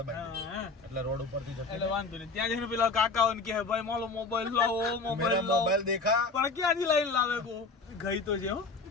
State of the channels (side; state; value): right; quieter; 4.0 dB